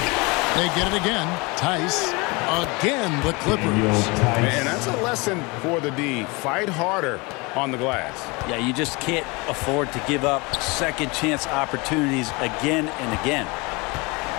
They get it again. Tice. Again, the Clippers. And that's a lesson for the D. Fight harder on the glass. Yeah, you just can't afford to give up second chance opportunities again and again.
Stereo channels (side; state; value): right; quieter; 26.7 dB